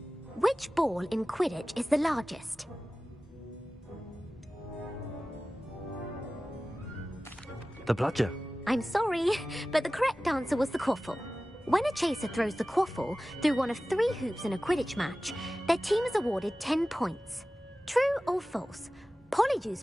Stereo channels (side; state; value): both; normal; correlation 0.96